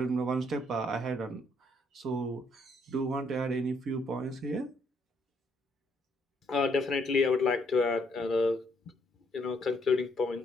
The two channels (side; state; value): both; normal; correlation 0.71